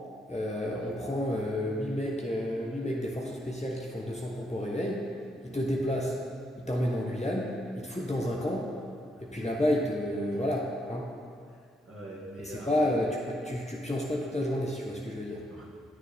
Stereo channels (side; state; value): both; normal; correlation 0.77